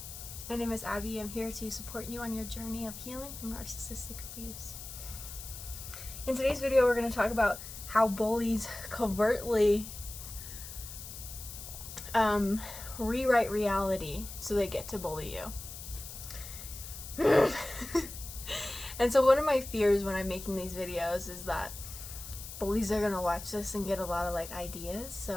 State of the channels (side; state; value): left; noise; hiss, 11 dB below the sound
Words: My name is Abby. I'm here to support you on your journey of healing from narcissistic abuse. In today's video, we're going to talk about how bullies covertly rewrite reality so they get to bully you. And so one of my fears when I'm making these videos is that bullies are going to watch this and get a lot of ideas.